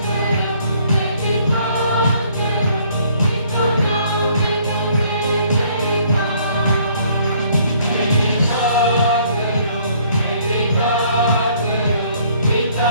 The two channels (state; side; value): inverted; both; correlation -0.62